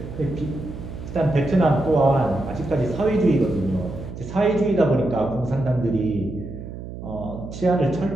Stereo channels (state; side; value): noise; right; hum, 11 dB below the sound